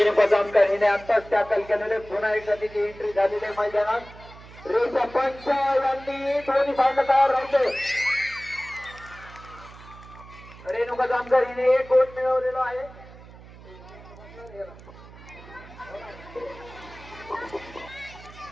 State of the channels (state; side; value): noise; right; hum, 19 dB below the sound